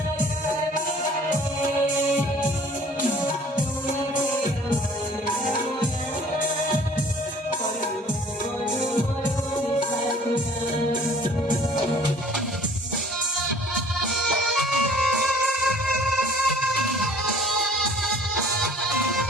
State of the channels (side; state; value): both; normal; correlation 0.53